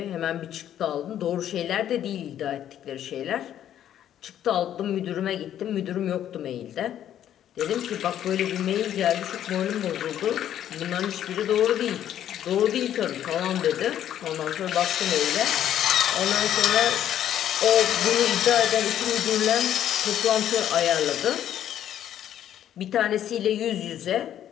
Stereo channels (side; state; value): right; quieter; 10.8 dB